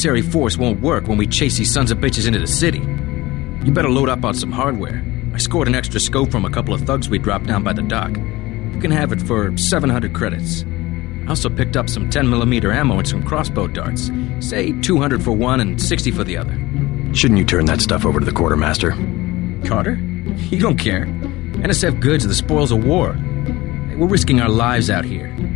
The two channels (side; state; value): right; quieter; 19.6 dB